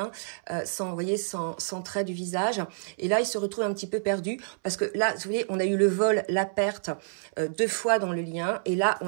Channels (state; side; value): silent; left; 59 dB below the other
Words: vous voyez, sans trait du visage. Et là, il se retrouve un petit peu perdu parce que là, vous voyez, on a eu le vol, la perte 2 fois dans le lien. Et là,